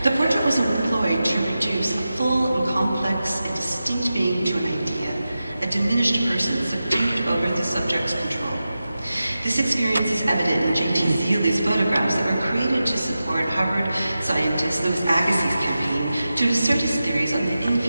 the portrait was employed to reduce a full and complex and distinct being to an idea, a diminished person subdued over the subject's control. This experience is evident in J.T. Zeeley's photographs that were created to support Harvard scientist Louis Agassiz' campaign to assert his theories on the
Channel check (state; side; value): inverted; both; correlation -0.93